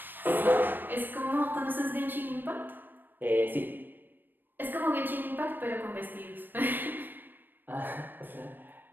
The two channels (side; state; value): left; late; 0.093 ms